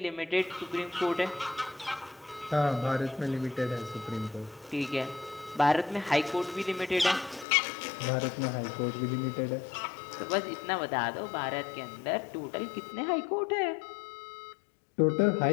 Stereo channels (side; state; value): right; drops out; at 7.5 s